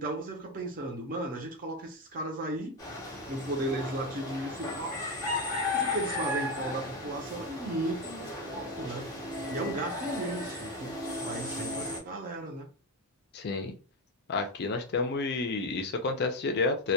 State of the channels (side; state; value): both; normal; correlation 0.12